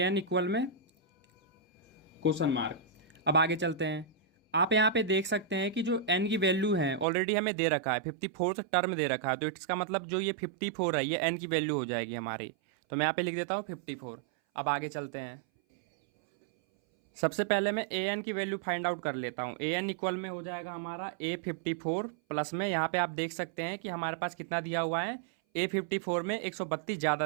इक्वल में क्वेश्चन मार्क। अब आगे चलते हैं। आप यहाँ पे देख सकते हैं कि जो एन की वैल्यू है ऑलरेडी हमें दे रखा है, 54th टर्म दे रखा है। तो इसका मतलब जो ये 54 है ये एन की वैल्यू हो जाएगी हमारी। तो मैं यहाँ पे लिख देता हूँ 54। अब आगे चलते हैं। सबसे पहले मैं ए एन की वैल्यू फाइंड आउट कर लेता हूँ। ए एन इक्वल में हो जाएगा हमारा ए 54 प्लस में, यहाँ पे आप देख सकते हैं कि हमारे पास कितना दिया हुआ है, ए 54 में 132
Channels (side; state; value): left; drops out; at 7.1 s